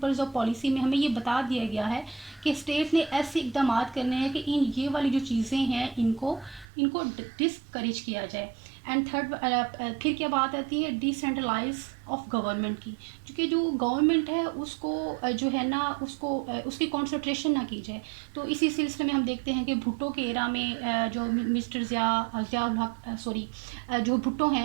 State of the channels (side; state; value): left; drops out; at 6.7 s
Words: آف پالیسی میں ہمیں یہ بتا دیا گیا ہے کہ اسٹیٹ نے ایسے اقدامات کرنے ہیں کہ یہ والی جو چیزیں ہیں ان کو ڈسکریج کیا جائے. اینڈ تھرڈ پھر کیا بات آتی ہے ڈیسینٹرلائز آف گورنمنٹ کی, کیونکہ جو گورنمنٹ ہے اس کو جو ہے نا اس کی کانسنٹریشن نہ کی جائے. تو اسی سلسلے میں ہم دیکھتے ہیں کہ بھٹو کے ایرا میں جو مسٹر ضیاء الحق جو بھٹو